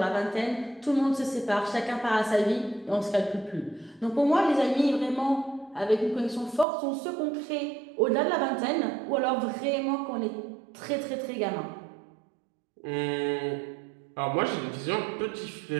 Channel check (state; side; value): drops out; left; at 6.7 s